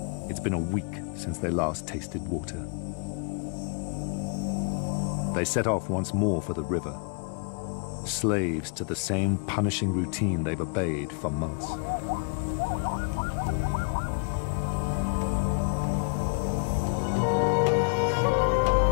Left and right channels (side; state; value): right; quieter; 37.9 dB